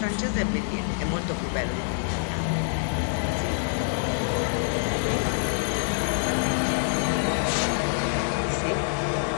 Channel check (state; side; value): silent; right; digital silence